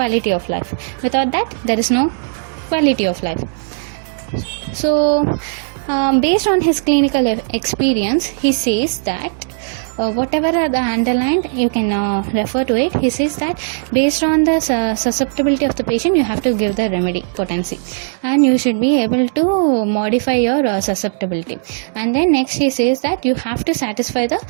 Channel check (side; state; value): left; silent; digital silence